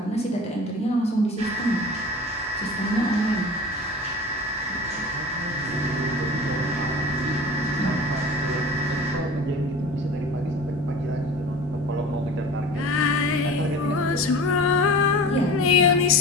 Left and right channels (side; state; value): both; normal; correlation 0.37